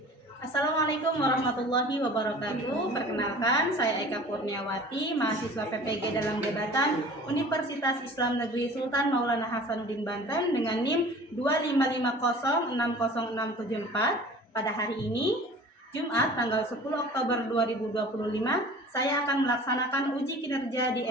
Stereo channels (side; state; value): both; normal; correlation 0.44